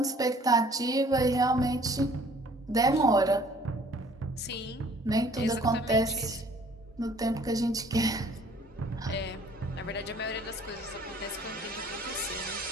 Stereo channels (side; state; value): both; normal; correlation 0.55